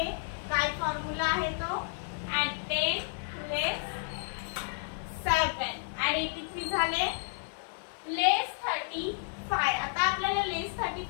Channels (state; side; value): silent; right; digital silence